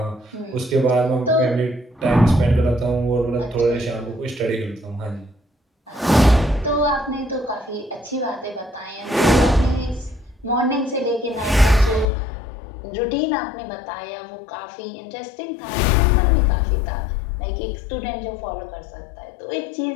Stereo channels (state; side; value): drops out; right; at 12.1 s